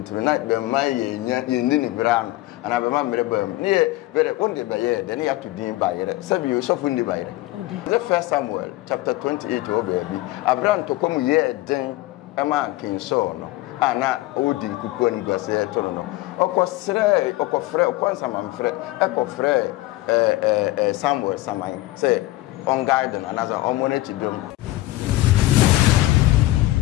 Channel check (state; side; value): quieter; right; 17.8 dB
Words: na be ma yenya yenni ni bram ana be ma mere bam ne be wonde be ye de ne ya to din bayire sabi yo sofu ni bayire the first Samuel chapter 28 o baby Abraham to come ye den e ma kin so no ana odi kuku ni gwase to no okosre okofre okonsama mfre ekofre Samuel samai say on garden another omonechi dum